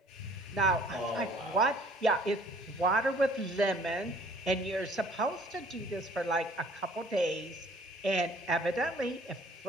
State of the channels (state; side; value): normal; both; correlation 0.55